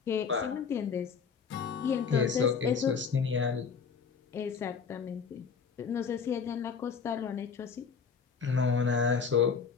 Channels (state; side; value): quieter; right; 6.0 dB